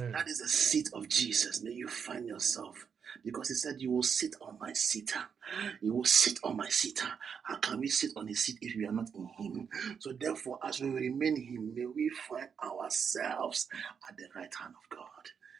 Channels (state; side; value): quieter; left; 6.8 dB